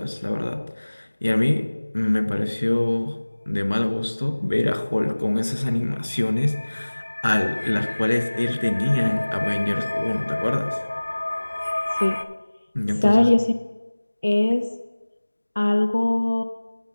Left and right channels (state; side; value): inverted; both; correlation -1.00